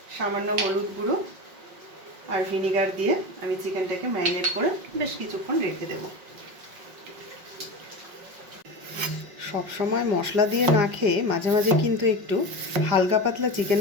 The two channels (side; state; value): left; late; 5.4 ms